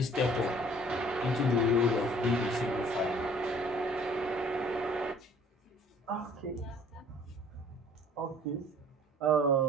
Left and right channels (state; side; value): normal; both; correlation 0.54